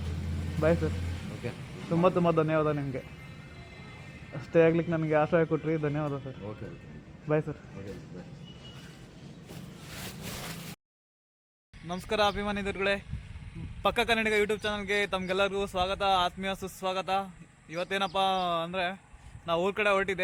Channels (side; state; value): both; identical; correlation 1.00